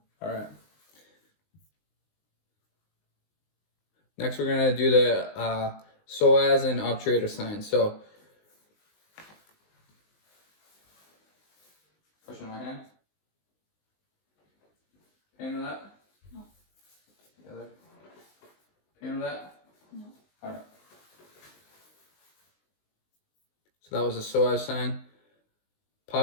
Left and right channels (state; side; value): late; right; 19 ms